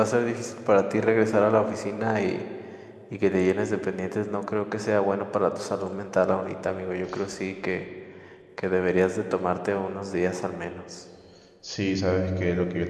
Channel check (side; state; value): both; identical; correlation 1.00